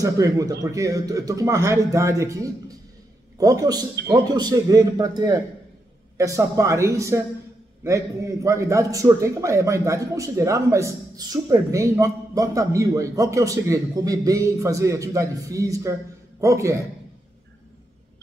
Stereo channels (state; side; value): normal; both; correlation 0.83